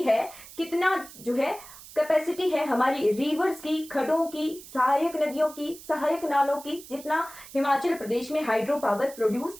है, कितना जो है कैपेसिटी है हमारी रिवर्स की, खड्डों की, सहायक नदियों की, सहायक नालों की, जितना हिमाचल प्रदेश में हाइड्रो पावर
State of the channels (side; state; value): right; noise; hiss, 17 dB below the sound